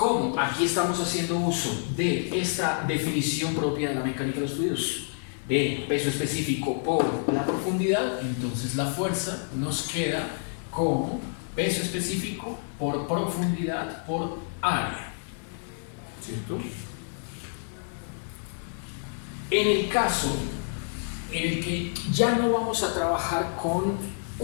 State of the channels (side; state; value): right; silent; digital silence